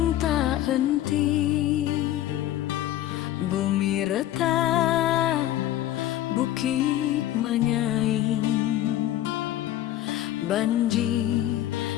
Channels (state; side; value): quieter; right; 13.3 dB